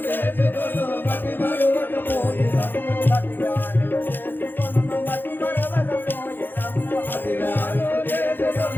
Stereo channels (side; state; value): right; late; 0.096 ms